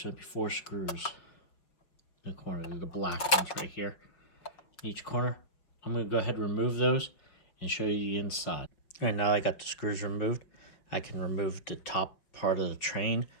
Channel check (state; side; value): late; right; 5.5 ms